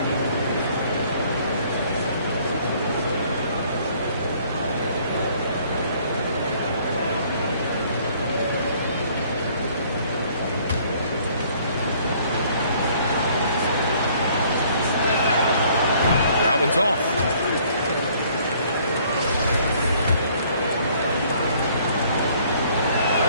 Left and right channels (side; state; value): both; inverted; correlation -0.60